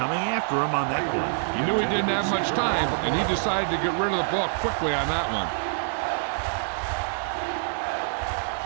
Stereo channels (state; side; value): silent; left; digital silence